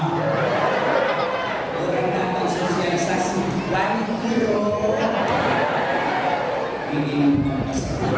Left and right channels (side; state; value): both; identical; correlation 1.00